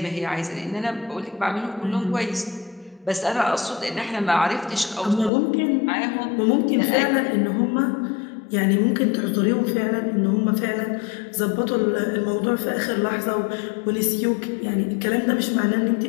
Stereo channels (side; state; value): right; drops out; at 5.3 s